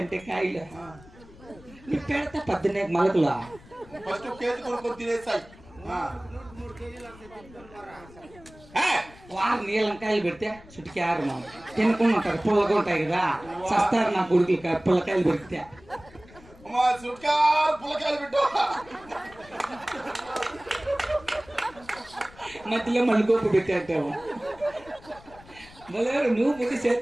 అంటే కాయలు నీ పెడతా 14 మొలకలు ఫస్ట్ కేజీ కొనుక్కొని తినేస్తాయి వారు నీలంకాయలు పెడితే చుట్టుకి ఆరు తినకుండా ఉంటారు పుల్లగా ఉంటాయి కదా సస్తారు నా కొడుకులు పుల్లకాయలు పెడితే పుల్లకాయలు పెట్టు మధ్యలో మళ్ళీ గోపు పెట్టేస్తావు మళ్ళీ నువ్వు ముందు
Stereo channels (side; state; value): left; noise; rumble, 22 dB below the sound